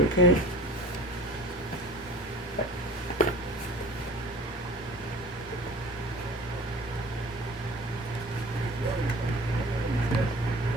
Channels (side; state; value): both; normal; correlation 0.42